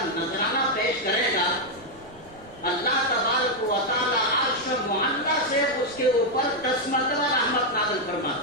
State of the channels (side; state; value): right; noise; rumble, 24 dB below the sound